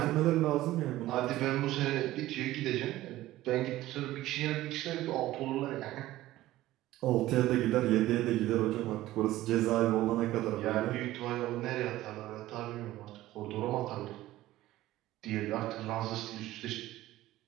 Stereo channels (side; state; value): left; quieter; 15.8 dB